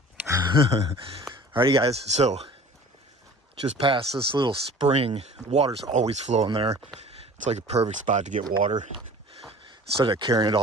Alrighty guys, so just past this little spring, water's always flowing there. It's like a perfect spot to get water. Instead of carrying it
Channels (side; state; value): both; normal; correlation 0.44